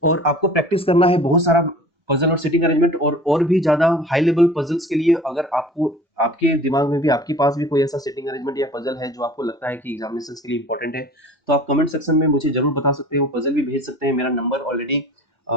और आपको प्रैक्टिस करना है बहुत सारा पजल और सिटिंग अरेंजमेंट, और भी ज्यादा हाई लेवल पजल्स के लिए अगर आपको आपके दिमाग में भी आपके पास भी कोई ऐसा सिटिंग अरेंजमेंट या पजल है जो आपको लगता है कि एग्जामिनेशन के लिए इंपॉर्टेंट है, तो आप कमेंट सेक्शन में मुझे जरूर बता सकते हैं, वो पजल भी भेज सकते हैं। मेरा नंबर ऑलरेडी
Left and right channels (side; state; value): both; normal; correlation 0.43